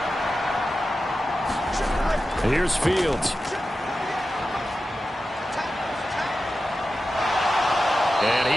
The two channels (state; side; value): normal; both; correlation 0.92